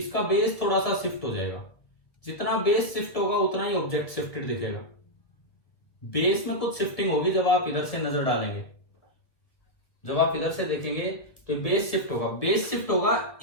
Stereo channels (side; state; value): right; late; 1.7 ms